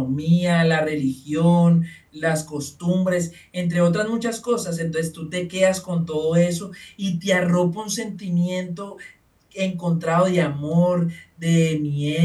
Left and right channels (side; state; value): both; identical; correlation 1.00